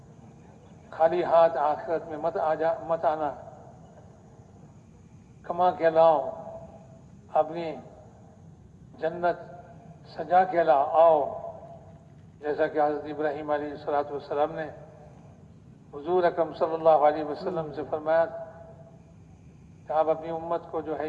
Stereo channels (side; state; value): both; identical; correlation 1.00